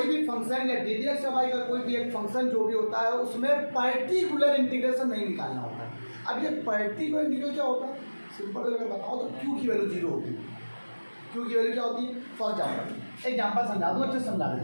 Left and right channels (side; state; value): both; inverted; correlation -1.00